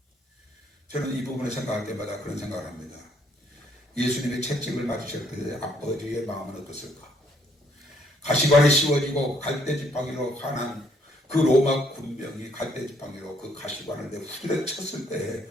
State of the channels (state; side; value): normal; both; correlation 0.67